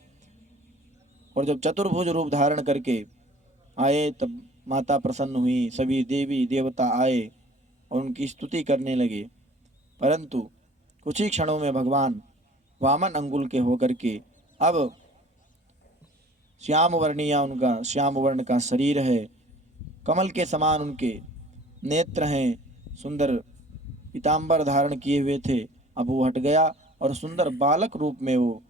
और जब चतुर्भुज रूप धारण करके आए तब माता प्रसन्न हुई, सभी देवी देवता आए और उनकी स्तुति करने लगे। परंतु कुछ ही क्षणों में भगवान वामन अंगुल के होकर के अब श्याम वर्णिया, उनका श्याम वर्ण का शरीर है, कमल के समान उनके नेत्र हैं, सुंदर पीताम्बर धारण किए हुए थे। अब वो हट गया और सुंदर बालक रूप में वो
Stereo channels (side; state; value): both; normal; correlation 0.49